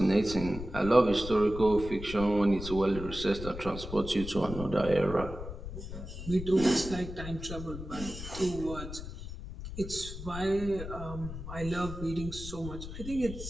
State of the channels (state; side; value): noise; left; rumble, 9 dB below the sound